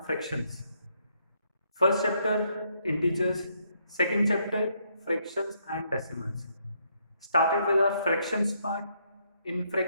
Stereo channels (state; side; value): inverted; both; correlation -0.73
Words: fractions. First chapter integers, second chapter fractions and decimals. Started with our fractions part. In